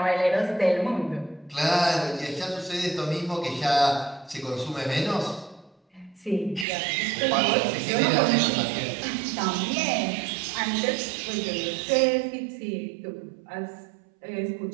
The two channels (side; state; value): left; drops out; at 6.7 s